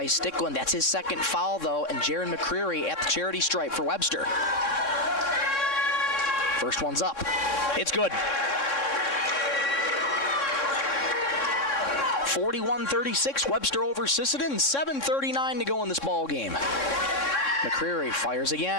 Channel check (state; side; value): late; right; 3.6 ms